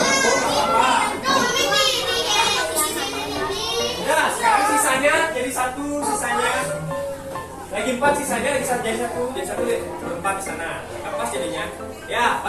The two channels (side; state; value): both; identical; correlation 1.00